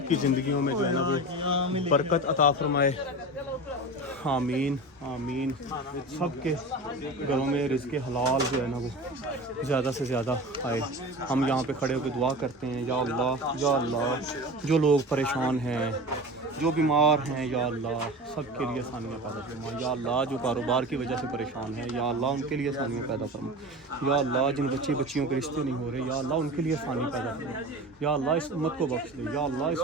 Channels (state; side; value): normal; both; correlation 0.32